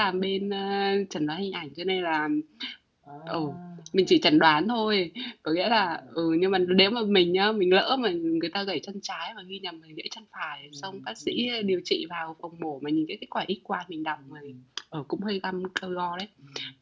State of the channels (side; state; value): both; identical; correlation 1.00